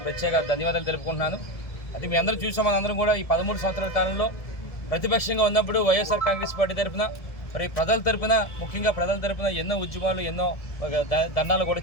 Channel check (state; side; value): late; right; 1.7 ms